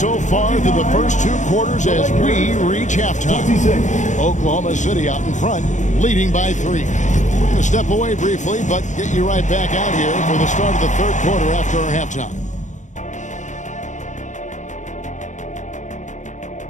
far through the first 2 quarters as we reach halftime. Oklahoma City out in front, leading by 3. We're going to step away briefly, but get you right back out here for the start of the 3rd quarter after our halftime.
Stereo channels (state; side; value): late; right; 0.35 ms